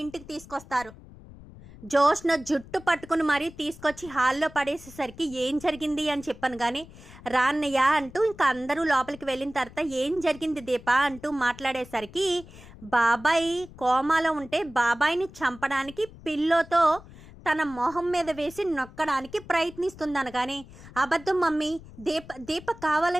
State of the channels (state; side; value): noise; left; rumble, 19 dB below the sound